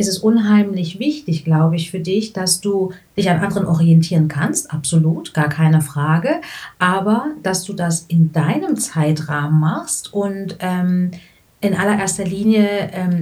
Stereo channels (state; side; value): identical; both; correlation 1.00